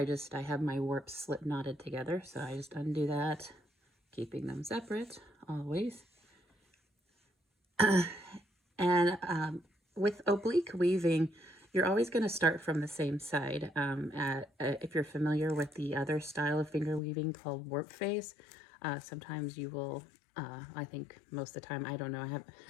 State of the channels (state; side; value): drops out; right; at 17.0 s